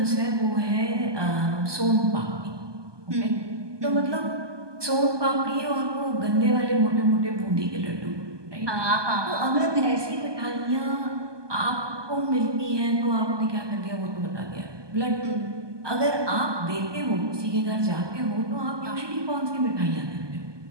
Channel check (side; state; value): left; late; 1.2 ms